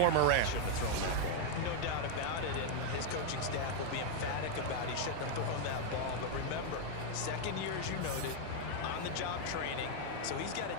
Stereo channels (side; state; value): both; different; correlation 0.00